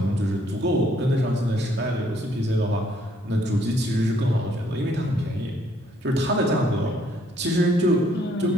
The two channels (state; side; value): normal; both; correlation 0.66